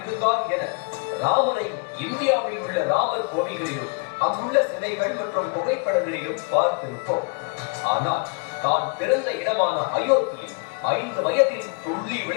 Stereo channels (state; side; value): quieter; right; 34.0 dB